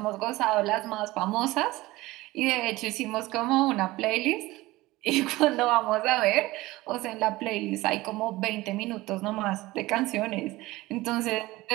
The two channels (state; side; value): quieter; left; 19.2 dB